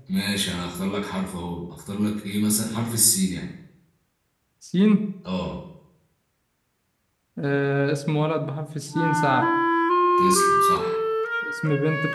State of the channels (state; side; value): identical; both; correlation 1.00